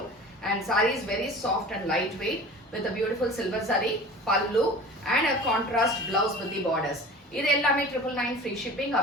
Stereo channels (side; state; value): both; normal; correlation 0.39